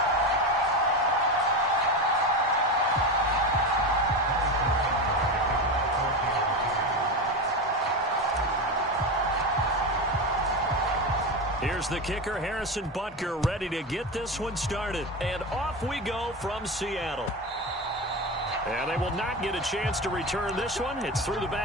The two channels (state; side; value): normal; both; correlation 0.20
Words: Here's the kicker, Harrison Butker, ready to get this one started. And off we go from Seattle. And they will not get a chance to return this one. It's through the